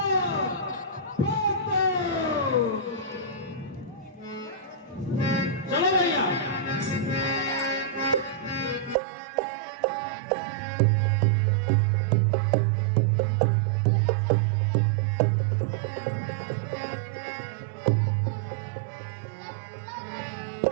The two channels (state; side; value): drops out; left; at 9.0 s